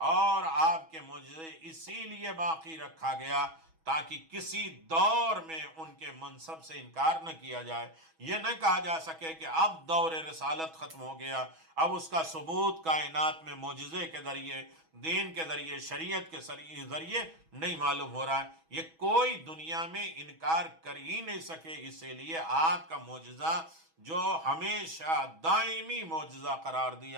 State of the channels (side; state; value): left; late; 6.2 ms